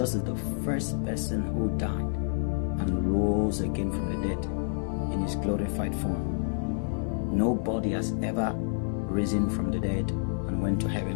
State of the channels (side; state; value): right; silent; 57 dB below the other